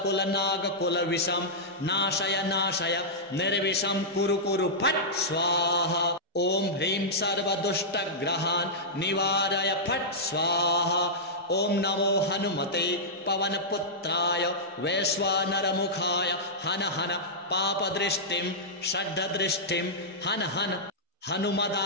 नागकुल विषम नाशय नाशय निर्विषम कुरु कुरु फट् स्वाहा। ॐ ह्रीं सर्वदुष्टग्रहान् निवारय फट् स्वाहा। ॐ नमो हनुमते पवनपुत्राय वैश्वानरमुखाय हन हन पापदृष्टिं षड्दृष्टिं हन हन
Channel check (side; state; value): both; normal; correlation -0.11